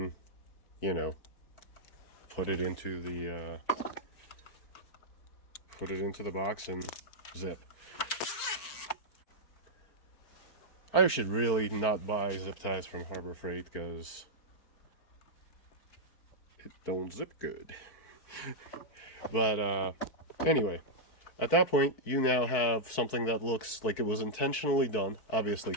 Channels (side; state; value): right; late; 4.5 ms